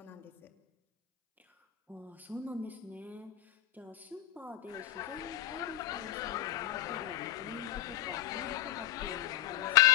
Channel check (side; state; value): right; quieter; 13.0 dB